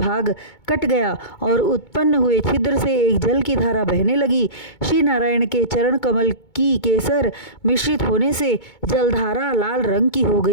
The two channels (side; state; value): right; late; 2.2 ms